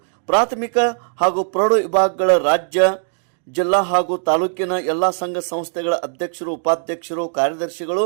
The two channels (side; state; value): left; silent; digital silence